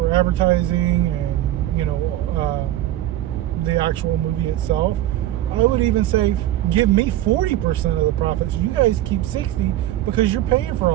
advertising and, you know, the actual movie itself, I would even say, give me 40% of the profits. You guys keep 60 because you're paying for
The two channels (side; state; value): left; quieter; 13.9 dB